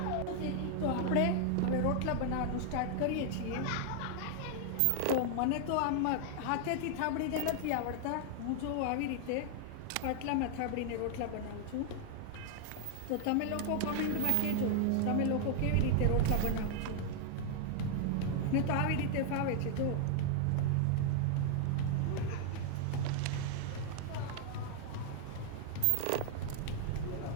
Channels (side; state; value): both; different; correlation 0.00